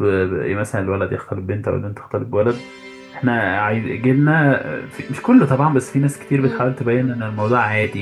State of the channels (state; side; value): identical; both; correlation 1.00